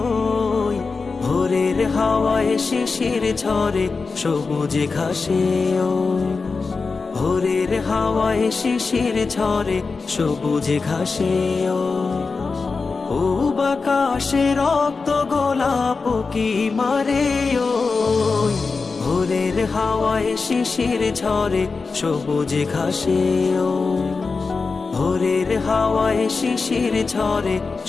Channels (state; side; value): quieter; right; 4.4 dB